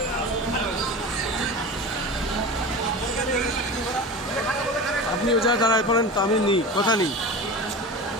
আপনি ও জায়গায় দাঁড়ায় পড়েন তো, আমি নিই কথা নিই।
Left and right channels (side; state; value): both; normal; correlation 0.31